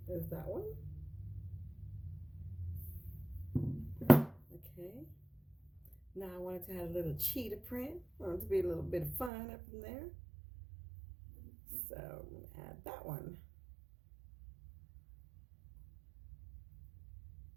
is that one. Okay. Now I wanted to have a little cheetah print. I want it to be a little bit of fun up in there. So I'm going to add that one.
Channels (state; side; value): drops out; left; at 9.3 s